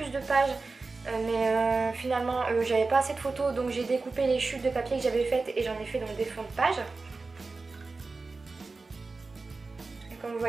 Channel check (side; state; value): left; quieter; 3.8 dB